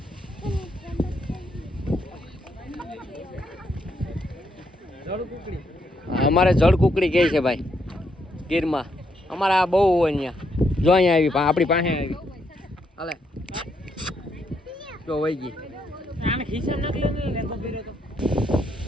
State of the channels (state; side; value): normal; both; correlation 0.76